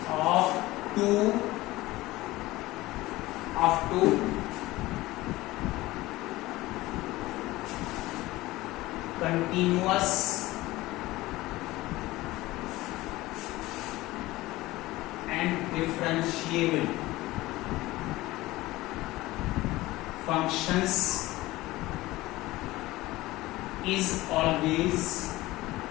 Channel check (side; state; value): right; quieter; 18.5 dB